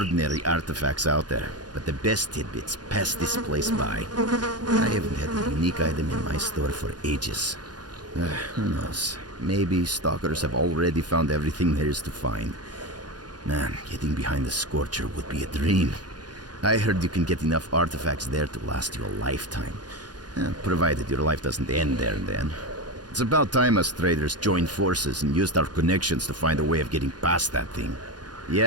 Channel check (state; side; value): late; left; 0.69 ms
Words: artifacts out there, but the best tidbits pass this place by. I haven't had a unique item in my store for ages. Who knows? Maybe stalkers have already found everything there is to find. Man, getting behind the Scorcher would be a dream. I heard you can get enough artifacts there to last you a lifetime. Provided your life doesn't end there and then. It's about time us traders joined forces and used our connections to find a way of getting past that thing.